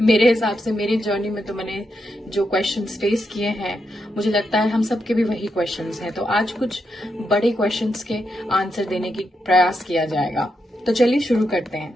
मेरे हिसाब से। मेरी जर्नी में तो मैंने जो क्वेश्चंस फेस किए हैं, मुझे लगता है हम सबके भी वही क्वेश्चंस हैं। तो आज कुछ बड़े क्वेश्चंस के आंसर देने की प्रयास किया जाएगा। तो चलिए शुरू करते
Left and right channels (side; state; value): both; normal; correlation 0.84